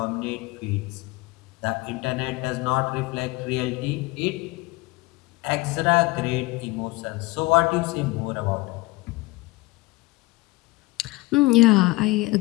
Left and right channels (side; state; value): right; quieter; 21.8 dB